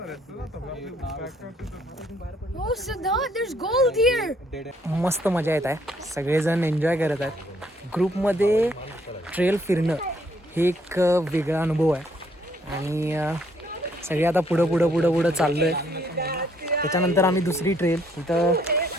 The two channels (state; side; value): normal; both; correlation 0.67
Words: मस्त मजा येत आहे. सगळेजण एन्जॉय करत आहेत. ग्रुपमध्ये ट्रेल फिरणं हे एक वेगळा अनुभव आहे. आणि सगळे आता पुढं चाललो आहे. त्याच्यानंतर आम्ही दुसरी ट्रेल इथं